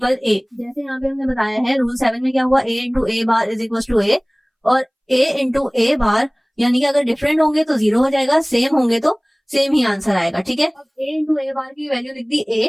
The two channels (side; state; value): both; identical; correlation 1.00